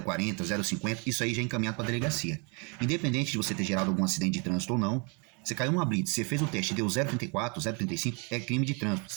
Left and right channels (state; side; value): quieter; left; 33.0 dB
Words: 0,50, isso aí já é encaminhado para a delegacia. Independente de você ter gerado algum acidente de trânsito ou não, você caiu numa blitz, você fez o teste e deu 0,34, 0,35, é crime de trânsito.